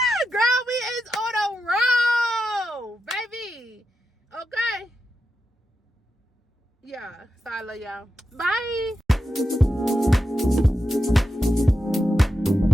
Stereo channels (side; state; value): both; normal; correlation 0.89